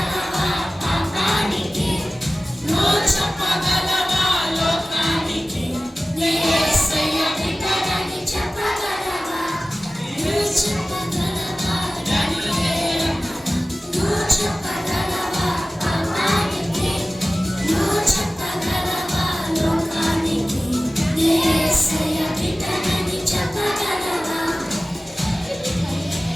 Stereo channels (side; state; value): both; normal; correlation 0.96